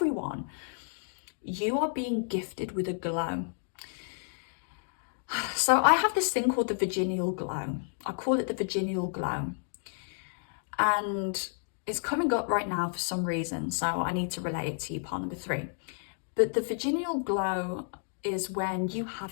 You are being gifted with a glow. So I have this thing called the virginal glow. I call it the virginal glow. And it's coming up right now for some reason, so I need to relate it to you, pile number 3. But the virginal glow is when you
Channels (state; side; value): silent; right; digital silence